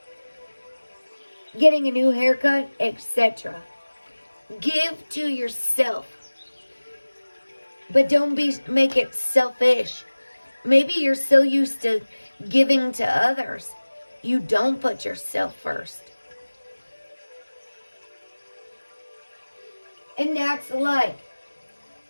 getting a new haircut, etc. Give to yourself, but don't make it selfish. Maybe you're so used to giving to others, you don't put yourself first. And that's like,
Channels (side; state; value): both; inverted; correlation -1.00